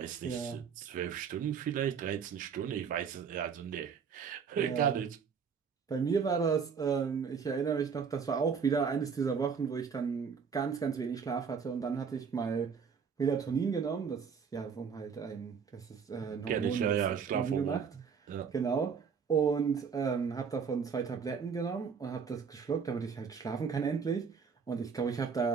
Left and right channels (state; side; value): quieter; left; 6.3 dB